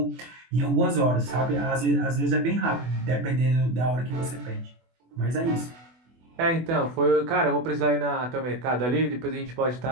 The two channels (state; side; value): late; left; 24 ms